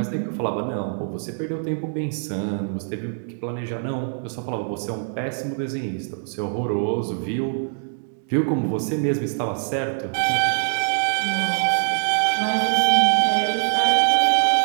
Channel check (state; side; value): silent; left; digital silence